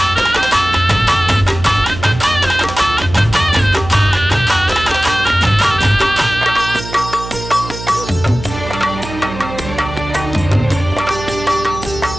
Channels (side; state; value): right; noise; hum, 11 dB below the sound